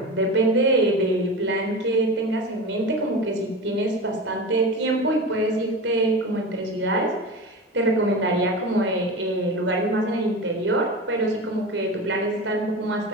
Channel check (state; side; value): normal; both; correlation 0.28